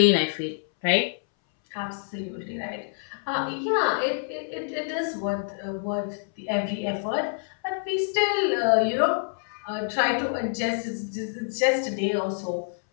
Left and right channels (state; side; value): silent; right; 60 dB below the other